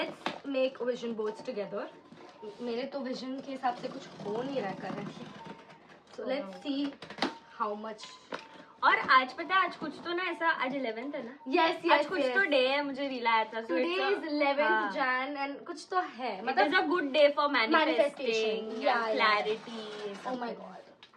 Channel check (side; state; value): both; identical; correlation 1.00